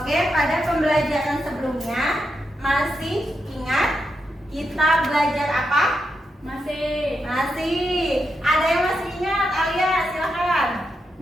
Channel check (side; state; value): both; normal; correlation 0.84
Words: pada pembelajaran sebelumnya masih ingat kita belajar apa? Masih. Ada yang masih ingat? Alia, silakan.